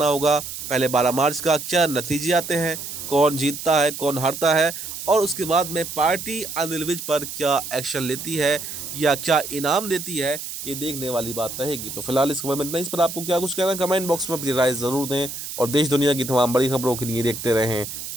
होगा पहले 12 मार्च का क्या नतीजे आते हैं, कौन जीतता है कौन हारता है और उसके बाद में पार्टी अनिल विज पर क्या एक्शन लेती है या क्या इनाम देती है, ये देखने वाली बात रहेगी। तो फिलहाल इस खबर में इतना ही। इस पर आपको क्या कुछ कहना है कमेंट बॉक्स में अपनी राय ज़रूर दें और देश दुनिया की तमाम बड़ी खबरों के लिए देखते रहें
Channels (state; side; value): noise; right; hiss, 8 dB below the sound